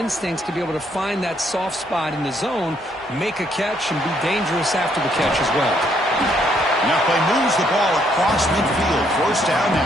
to be able to find that soft spot in the zone, make a catch, and be dangerous after the catch as well. Now play moves the ball across midfield. First down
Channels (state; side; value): normal; both; correlation 0.70